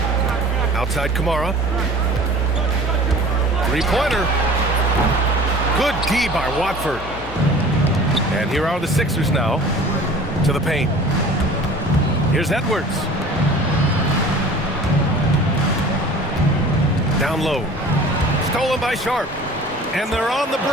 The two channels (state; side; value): normal; both; correlation 0.44